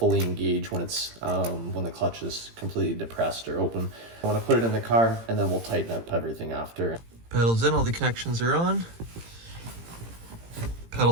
engage when it's when the clutch is completely depressed or open. I want to put it in the car, and then we'll tighten up everything after. Pedals in, all the connections are on.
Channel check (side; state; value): left; late; 18 ms